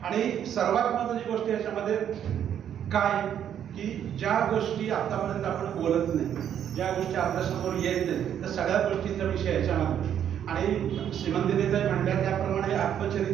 आणि सर्वात महत्त्वाची गोष्ट याच्यामध्ये काय की ज्या गोष्टी आतापर्यंत आपण बोलत नाही, ज्या गोष्टी आपल्यासमोर येत नाही, त्या सगळ्या गोष्टींचा विषय याच्यामध्ये. आणि श्रीमंतीताई म्हणल्या त्याप्रमाणे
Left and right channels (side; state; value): left; quieter; 9.5 dB